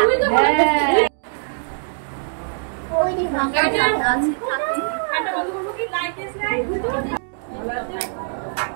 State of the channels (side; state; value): left; silent; digital silence